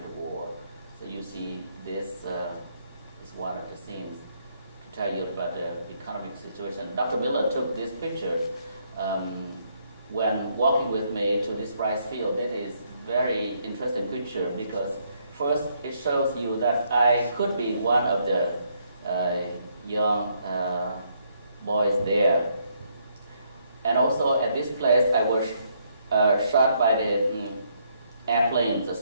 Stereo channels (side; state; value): both; inverted; correlation -0.72